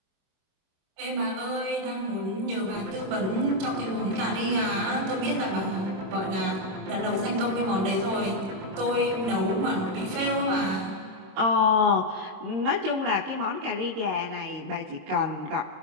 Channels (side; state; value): left; late; 26 ms